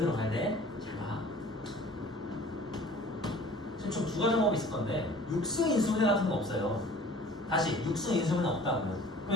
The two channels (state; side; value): normal; both; correlation 0.48